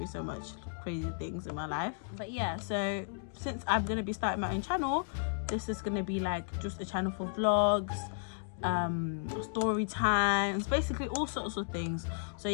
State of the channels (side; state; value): right; silent; digital silence